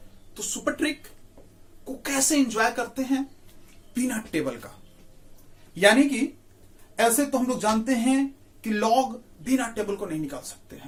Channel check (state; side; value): identical; both; correlation 1.00